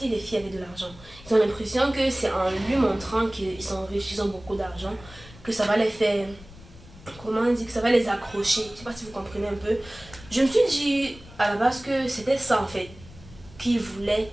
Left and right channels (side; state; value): left; noise; rumble, 20 dB below the sound